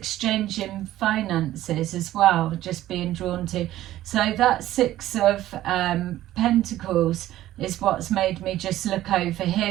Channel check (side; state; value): left; quieter; 14.3 dB